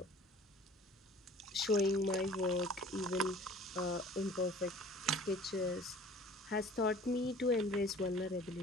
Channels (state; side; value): normal; both; correlation 0.48